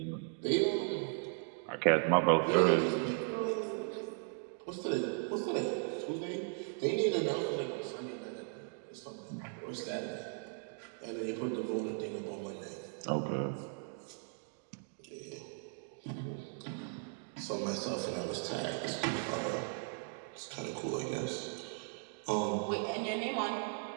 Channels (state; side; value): silent; left; 53 dB below the other